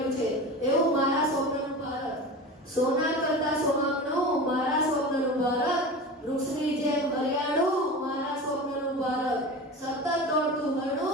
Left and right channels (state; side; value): normal; both; correlation 0.31